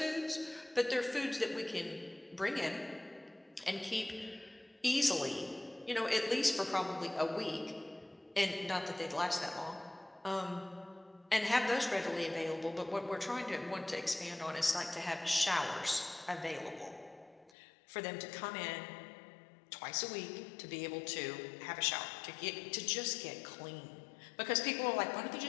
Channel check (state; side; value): drops out; right; at 17.5 s